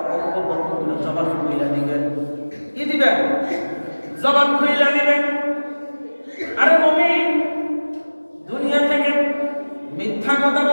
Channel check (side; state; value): both; inverted; correlation -1.00